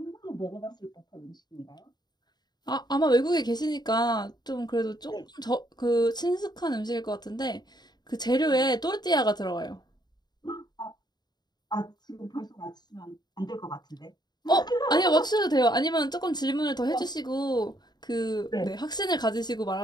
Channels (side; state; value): right; late; 0.20 ms